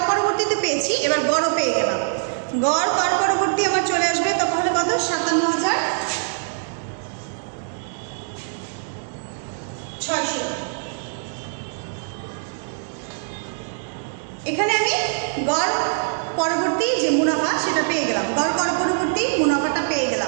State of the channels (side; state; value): left; silent; digital silence